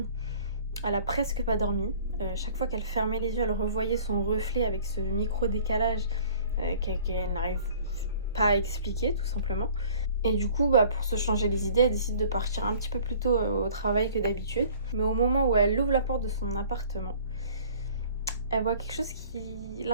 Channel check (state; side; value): inverted; both; correlation -0.50